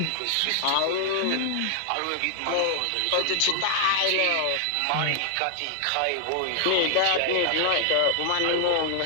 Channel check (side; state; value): both; different; correlation 0.00